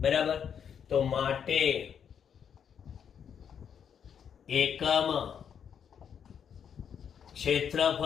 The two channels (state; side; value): quieter; right; 7.9 dB